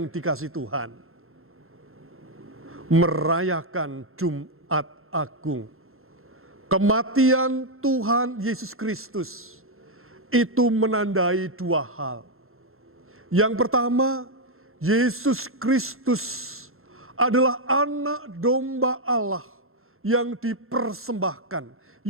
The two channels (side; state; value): left; late; 0.62 ms